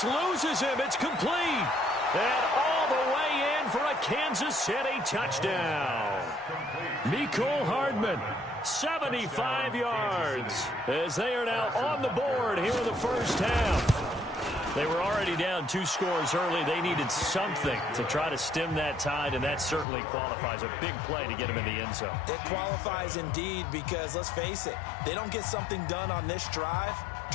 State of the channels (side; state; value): right; drops out; at 19.9 s